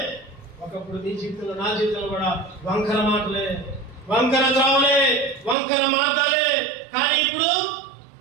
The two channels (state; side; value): drops out; left; at 5.6 s